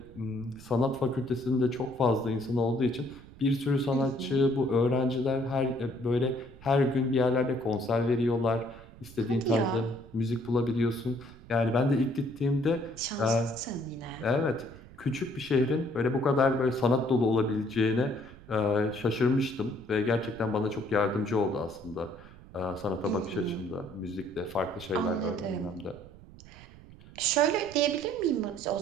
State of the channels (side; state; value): right; noise; rumble, 19 dB below the sound